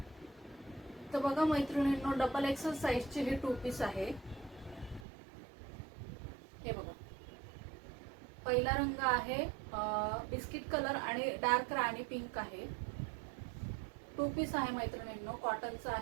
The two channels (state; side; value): drops out; left; at 5.1 s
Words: तर बघा मैत्रिणींनो, डबल एक्सेल साइजचे हे 2 पीस आहे। हे बघा, पहिला रंग आहे बिस्किट कलर आणि डार्क राणी पिंक आहे। 2 पीस आहे मैत्रिणींनो, कॉटनचा